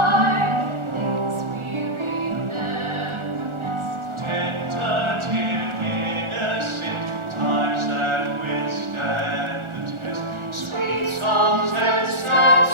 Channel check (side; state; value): left; late; 1.4 ms